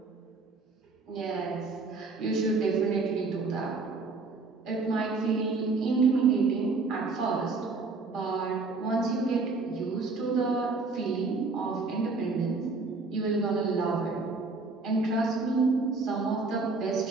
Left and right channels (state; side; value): quieter; left; 3.9 dB